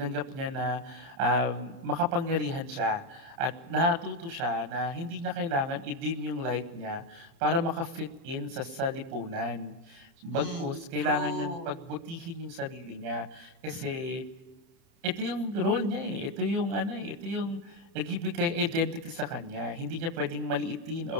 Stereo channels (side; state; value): left; late; 30 ms